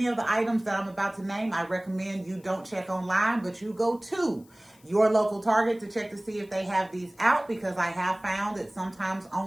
of the items that I'm about to name, I recommend you don't check online, but you go to your local Target to check to see if they have these out, because I have found that sometimes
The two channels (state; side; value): noise; left; hiss, 29 dB below the sound